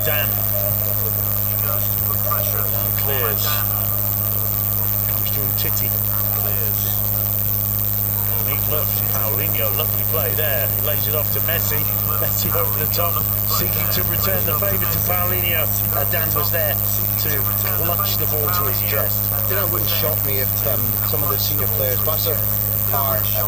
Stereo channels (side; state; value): both; normal; correlation 0.95